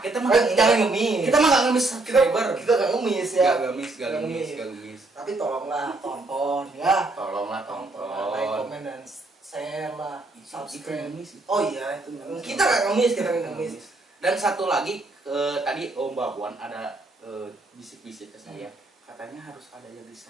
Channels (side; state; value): left; quieter; 3.1 dB